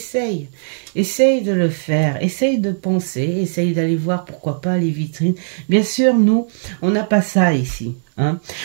de le faire, essaye de penser, essaye d'aller voir pourquoi pas les vitrines. Bien sûr, nous, on n'a pas ça ici, hein.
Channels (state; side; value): silent; left; digital silence